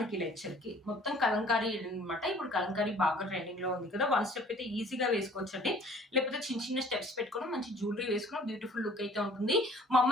లెక్చర్ కి మొత్తం కలంకారీ అనమాట. ఇప్పుడు కలంకారీ బాగా ట్రెండింగ్ లో ఉంది కదా, వన్ స్టెప్ అయితే ఈజీగా వేసుకోవచ్చండి. లేకపోతే చిన్న చిన్న స్టెప్స్ పెట్టుకుని మంచి జ్యువెలరీ వేసుకున్న బ్యూటిఫుల్ లుక్ అయితే ఉంటుంది.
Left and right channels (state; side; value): normal; both; correlation 0.53